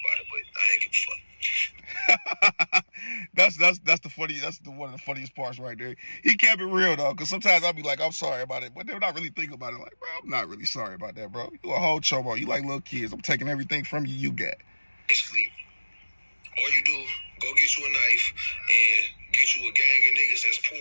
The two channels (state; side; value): inverted; both; correlation -1.00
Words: it, but I ain't give a fuck. That's one of the funniest parts right there. He kept it real though, because sometimes I'll be like, I'm sorry about it, but they're not really thinking about it. Like, bro, I'm not really sorry about that, bro. You a whole chobo. You like little kids. I'm taking everything from you got. Basically, all you do, go get you a knife and get you a gang of niggas that's poor,